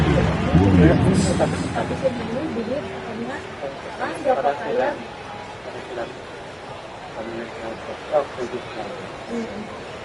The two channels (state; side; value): identical; both; correlation 1.00